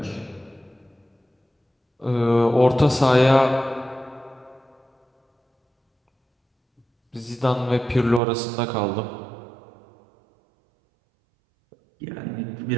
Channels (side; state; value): left; drops out; at 8.2 s